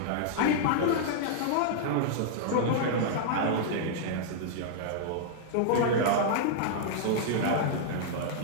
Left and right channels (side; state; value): both; different; correlation -0.02